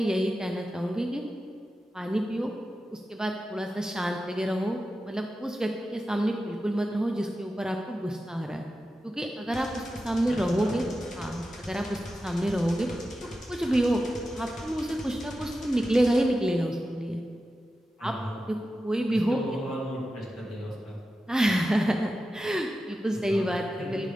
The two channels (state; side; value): normal; both; correlation 0.92